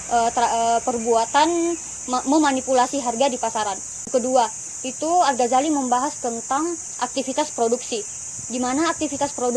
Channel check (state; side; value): identical; both; correlation 1.00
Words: perbuatan memanipulasi harga di pasaran. Kedua, itu Al-Ghazali membahas tentang aktivitas produksi, di mana aktivitas